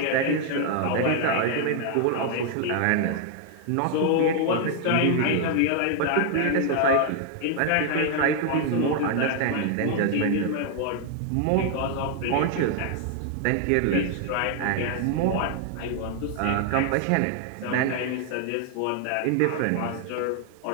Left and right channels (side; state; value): both; different; correlation 0.00